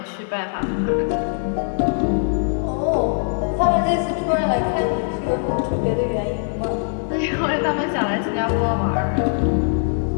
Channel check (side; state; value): right; silent; 65 dB below the other